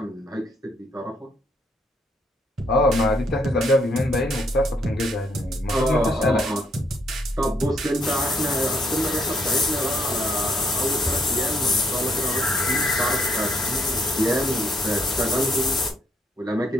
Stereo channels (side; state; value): both; normal; correlation 0.71